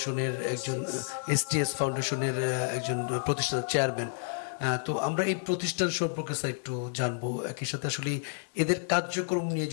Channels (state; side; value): silent; right; digital silence